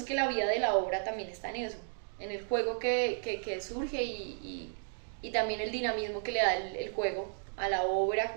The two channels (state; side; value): silent; left; digital silence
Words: que la vida de la obra también está en eso, en el juego que surge y también el dinamismo que le da el juego a la obra,